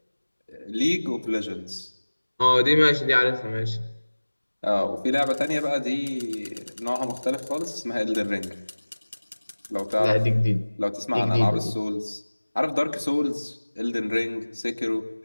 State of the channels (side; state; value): both; inverted; correlation -1.00